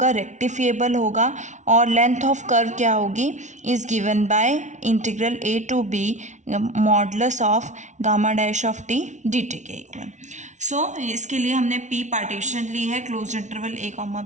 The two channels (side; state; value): left; late; 0.35 ms